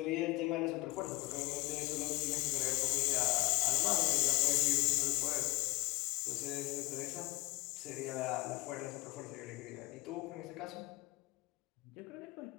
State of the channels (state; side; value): quieter; right; 22.1 dB